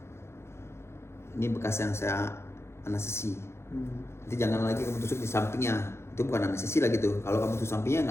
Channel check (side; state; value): right; late; 0.13 ms